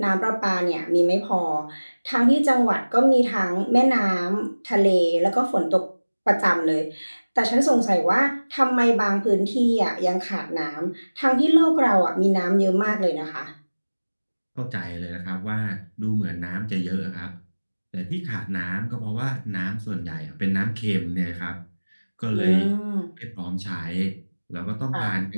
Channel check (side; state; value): both; inverted; correlation -1.00